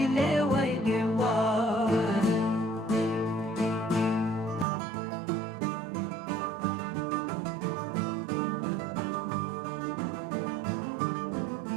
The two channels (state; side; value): drops out; left; at 4.7 s